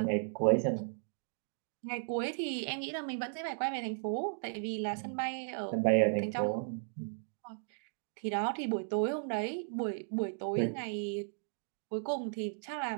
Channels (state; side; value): silent; left; digital silence